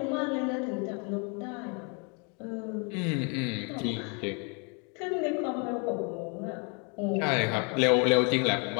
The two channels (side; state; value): right; quieter; 35.2 dB